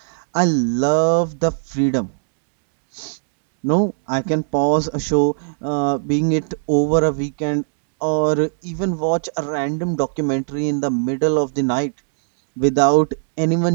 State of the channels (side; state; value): left; silent; digital silence